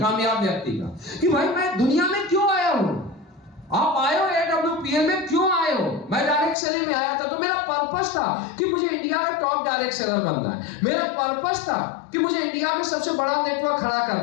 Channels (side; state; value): right; drops out; at 6.6 s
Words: कामयाब व्यक्ति का, कि भाई मैं दुनिया में क्यों आया हूं। आप आए हो AWPL में, क्यों आए हो? मैं डायरेक्ट सेलिंग में आया था तो मेरा पर्पस था कि मुझे इंडिया का टॉप डायरेक्ट सेलर बनना है। मेरा पर्पस था कि मुझे इंडिया में सबसे बड़ा नेटवर्क खड़ा